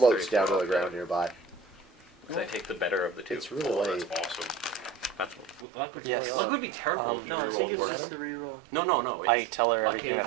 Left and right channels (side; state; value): left; drops out; at 5.7 s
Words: down to the ground nearby. I take the better of the two. It's really Oh, late. that's awesome. That's luck would, Yes. luck would be terrible. if No, you I think roll it's worse. just the reroll. No. It's, I tell her luck everything that